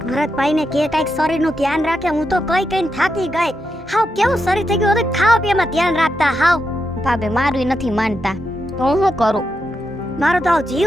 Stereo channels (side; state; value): both; normal; correlation 0.85